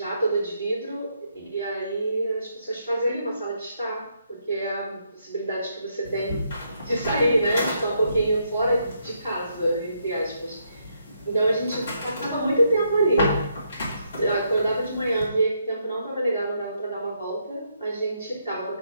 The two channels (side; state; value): both; inverted; correlation -0.76